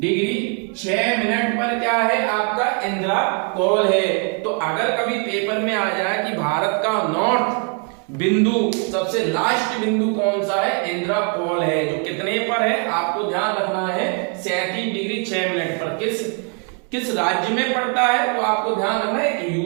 6 मिनट पर क्या है, आपका इंदिरा कॉल है। तो अगर कभी पेपर में आ जाए कि भारत का नॉर्थ बिंदु, सबसे लास्ट बिंदु कौन सा है, इंदिरा कॉल है, जो कितने पर है, आपको ध्यान रखना है 37 डिग्री 6 मिनट पर। किस राज्य में पड़ता है, तो आपको ध्यान रखना है,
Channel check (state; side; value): quieter; left; 39.6 dB